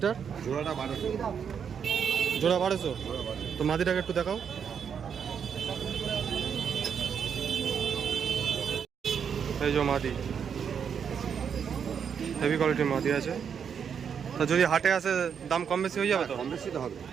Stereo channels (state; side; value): quieter; left; 7.3 dB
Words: জোড়াটা 1200। জোড়া 1200? তো মাদিটাকে একটু দেখাও। এই যে মাদি, হেভি কোয়ালিটির মাদি আছে। তা যদি হাটে আসে দাম কম বেশি হয়ে যাবে তো? কম বেশি তো হবে।